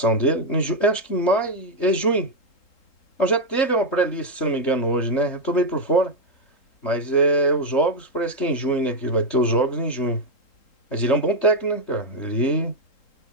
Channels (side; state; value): right; late; 3.8 ms